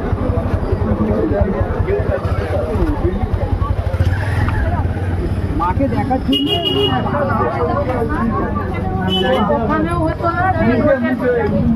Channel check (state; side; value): identical; both; correlation 1.00